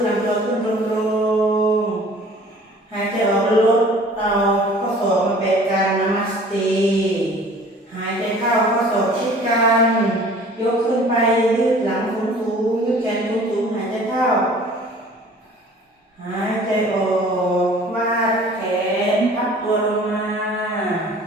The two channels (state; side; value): normal; both; correlation 0.49